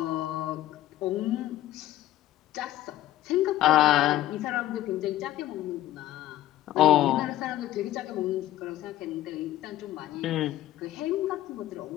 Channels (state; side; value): quieter; right; 14.1 dB